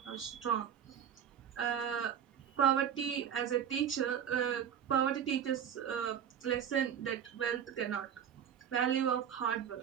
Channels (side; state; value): left; quieter; 8.8 dB